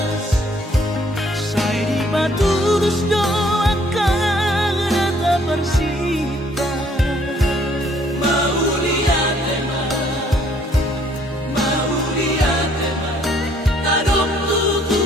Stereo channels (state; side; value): normal; both; correlation 0.63